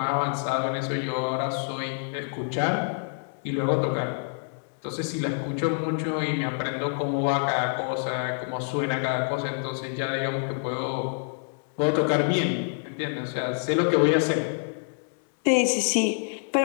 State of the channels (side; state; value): right; silent; 60 dB below the other